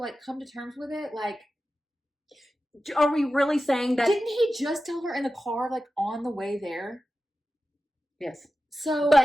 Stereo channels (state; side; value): normal; both; correlation 0.93